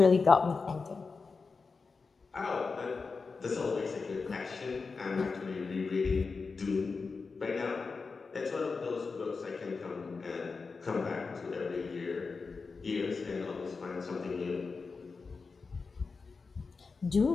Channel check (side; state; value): right; quieter; 4.5 dB